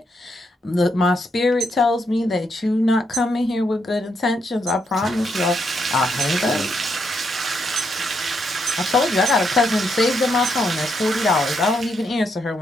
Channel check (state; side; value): normal; both; correlation 0.78